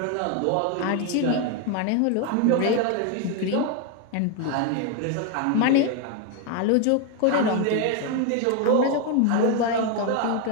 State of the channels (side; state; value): both; different; correlation 0.01